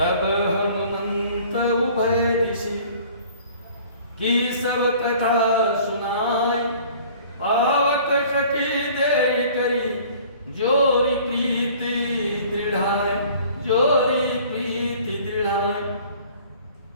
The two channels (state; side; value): inverted; both; correlation -0.51